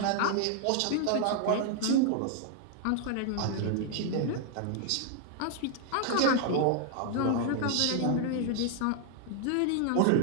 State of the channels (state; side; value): different; both; correlation 0.00